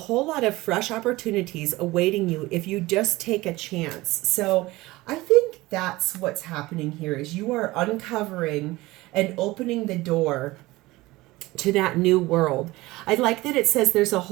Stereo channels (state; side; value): quieter; left; 19.7 dB